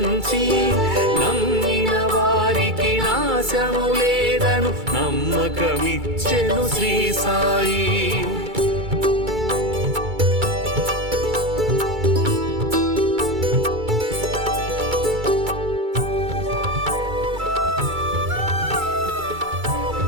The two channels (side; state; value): left; late; 2.3 ms